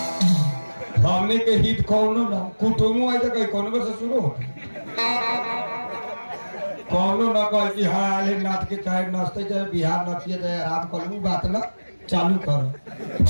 हमने के हित कौनो ना कुटुम्ब आई तो कहीं कौन से शुरू हो कौनो ना कह कि हाँ आले नाथ के चाहे नचते चाहे बिहार नचिए चाहे आराम करूँ बात ना चालू करो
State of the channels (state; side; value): inverted; both; correlation -1.00